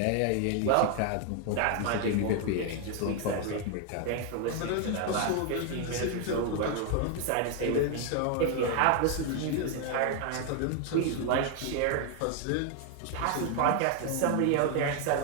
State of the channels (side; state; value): both; different; correlation 0.01